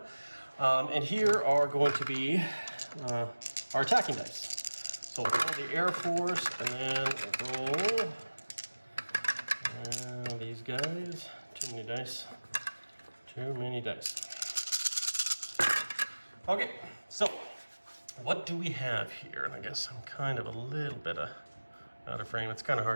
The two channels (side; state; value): both; inverted; correlation -1.00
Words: And here are going to be our attacking dice. So we'll roll the Air Force, and then we'll roll these guys. Too many dice. Too many dice. Okay, so what do we have here? And I guess I'm kind of a little bit out of frame. It's kind of